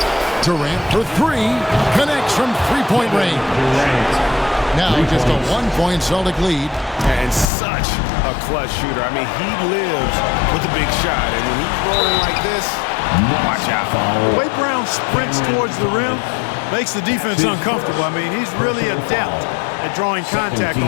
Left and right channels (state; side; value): drops out; right; at 7.5 s